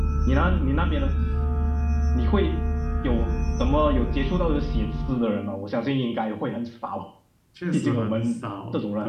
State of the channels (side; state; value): both; identical; correlation 1.00